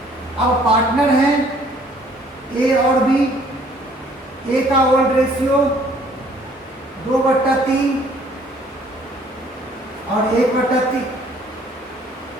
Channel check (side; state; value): both; normal; correlation 0.59